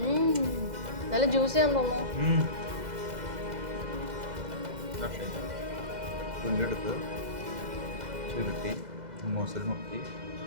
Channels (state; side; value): late; left; 2.0 ms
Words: നല്ല ജ്യൂസിയാന്ന് തോന്നുന്നു. പുല്ലെടുത്ത് ചുരുട്ടി ഹുമൂസിൽ മുക്കി.